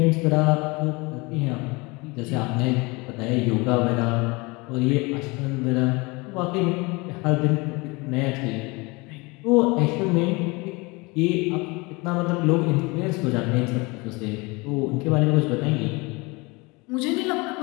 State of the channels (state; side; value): quieter; right; 25.9 dB